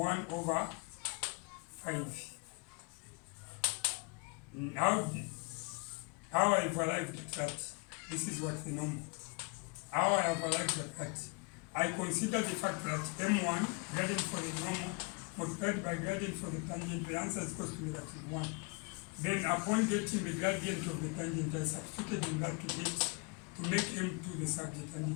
over 5. How I've arrived at that, this is what the normal. How I have arrived at that, I consider the fact that m1, gradient for the normal, multiplied by gradient for the tangent, the answer is equal to negative 1. Then upon getting the gradient of the tangent, I substituted in that to make m2 the subject,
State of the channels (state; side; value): quieter; right; 32.4 dB